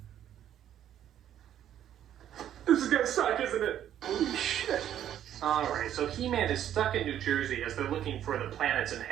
This is gonna suck, isn't it? Holy shit. Alright, so He-Man is stuck in New Jersey as they're looking for the planet's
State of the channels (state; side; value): quieter; left; 10.8 dB